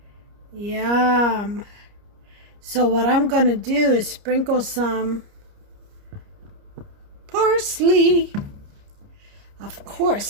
Yum. So what I'm going to do is sprinkle some parsley. Of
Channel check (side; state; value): left; late; 29 ms